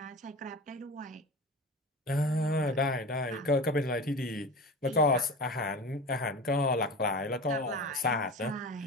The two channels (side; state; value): both; normal; correlation 0.32